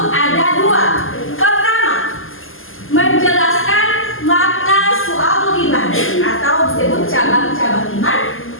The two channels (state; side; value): late; right; 0.59 ms